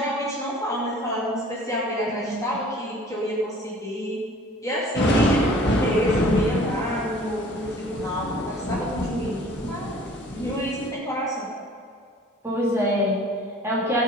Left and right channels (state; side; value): normal; both; correlation 0.50